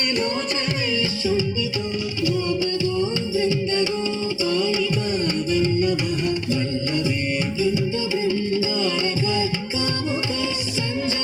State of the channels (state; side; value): identical; both; correlation 1.00